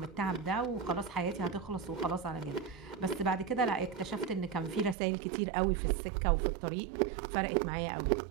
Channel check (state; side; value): drops out; left; at 5.0 s